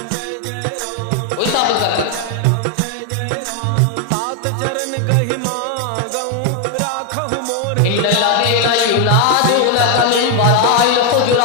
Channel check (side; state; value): both; different; correlation 0.01